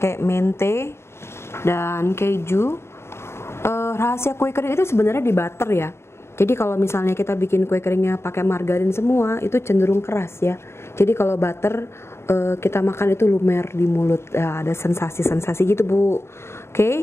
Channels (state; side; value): late; right; 0.12 ms